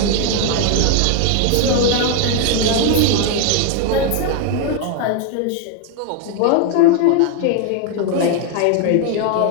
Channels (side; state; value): both; different; correlation 0.00